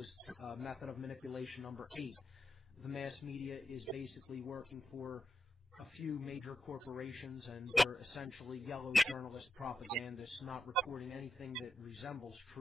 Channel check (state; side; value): normal; both; correlation 0.86